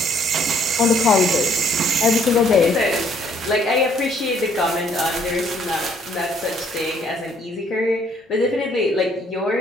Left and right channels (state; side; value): normal; both; correlation 0.64